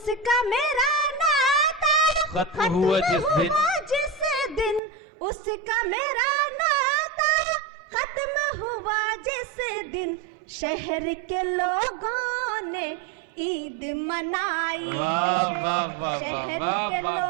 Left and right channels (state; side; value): drops out; left; at 4.8 s